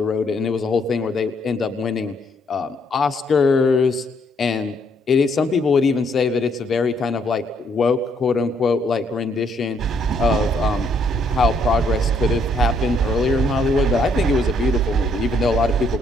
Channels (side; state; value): both; normal; correlation 0.70